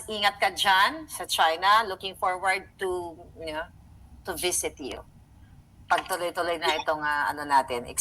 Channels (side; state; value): both; identical; correlation 1.00